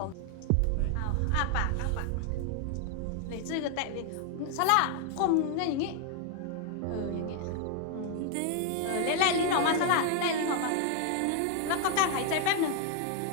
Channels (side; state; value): both; different; correlation 0.00